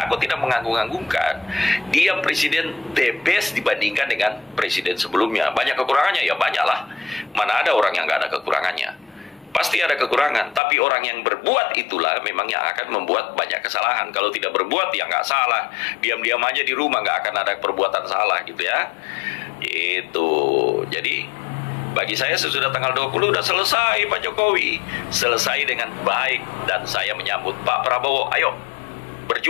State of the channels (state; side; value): drops out; right; at 10.6 s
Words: aku tidak menganggung-anggungkan. Dia presiden the best dibandingkan dengan presiden sebelumnya. Banyak kekurangannya, ya banyak lah. Mana ada orang yang nggak ada kekurangannya? Pasti ada kekurangan. Tapi orang yang berbuat itulah memang yang akan membuat banyak kesalahan. Kalau tidak berbuat ya nggak salah. Diam-diam aja di rumah nggak akan ada perbuatan salah gitu ya. Itu. Jadi bagi saya sesudah tanggal 20 udah selesai Pak Jokowi. Selesai dengan baik. Dan saya menyambut Pak Prabowo. Ayo